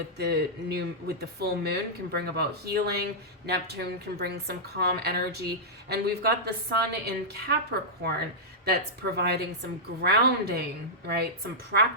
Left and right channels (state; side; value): normal; both; correlation -0.10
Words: the full moon can bring about healing. Neptune can bring some calm energy. And we've got the sun in Capricorn that's providing some grounding, right? Some